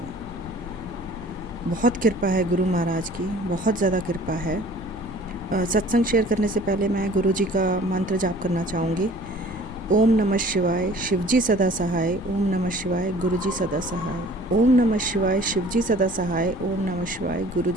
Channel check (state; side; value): noise; left; rumble, 17 dB below the sound